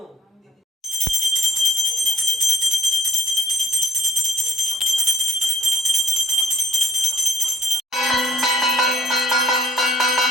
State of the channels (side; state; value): both; normal; correlation 0.63